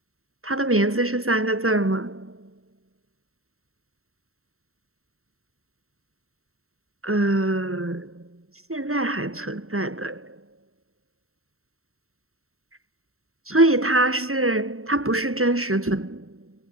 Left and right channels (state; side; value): late; left; 0.63 ms